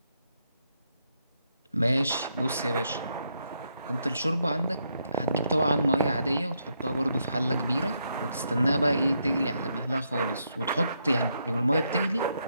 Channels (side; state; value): both; inverted; correlation -0.78